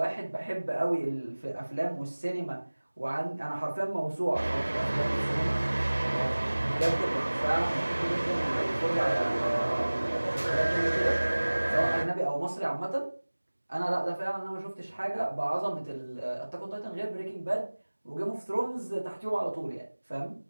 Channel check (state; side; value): inverted; both; correlation -1.00